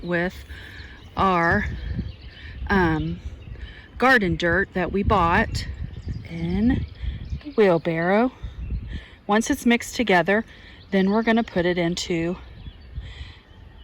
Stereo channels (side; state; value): both; identical; correlation 1.00